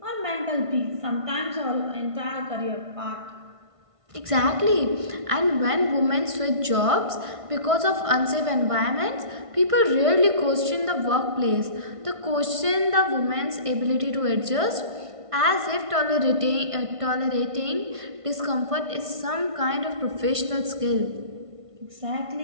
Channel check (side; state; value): left; late; 1.5 ms